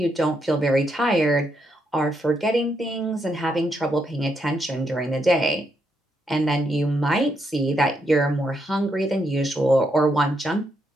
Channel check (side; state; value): both; normal; correlation 0.78